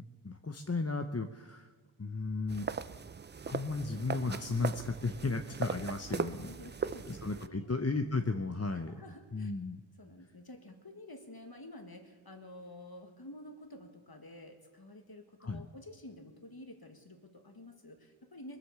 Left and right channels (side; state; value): both; normal; correlation 0.49